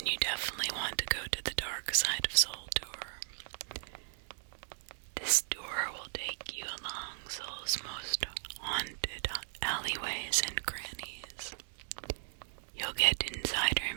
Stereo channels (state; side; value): silent; left; digital silence